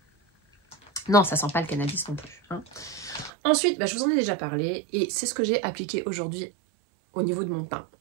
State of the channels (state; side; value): drops out; left; at 3.3 s